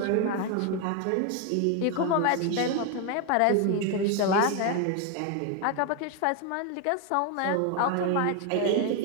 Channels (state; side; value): different; both; correlation 0.01